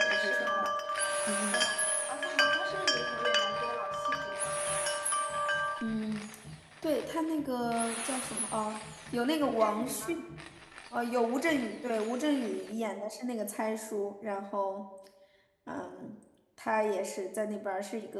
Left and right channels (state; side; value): identical; both; correlation 1.00